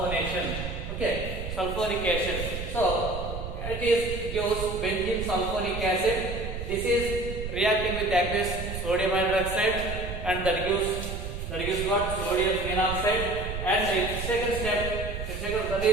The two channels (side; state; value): right; noise; rumble, 6 dB below the sound